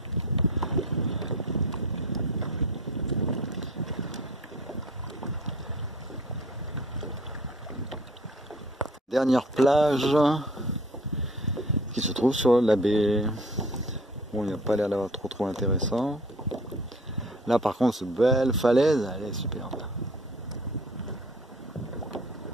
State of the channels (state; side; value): normal; both; correlation 0.49